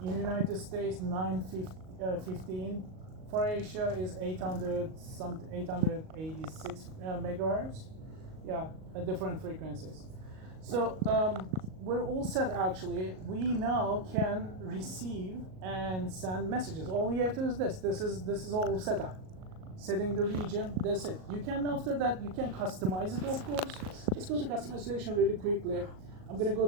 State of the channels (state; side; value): late; left; 38 ms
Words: in the United States 915, for Asia is 886 megahertz. Yeah, different frequencies. So we're all set actually. We now can receive and send messages. All we have to do is this. This is all set up. Setting the region, that's it. You can, after that, you can customize it, of course. Just go to customization really quickly. I'm gonna go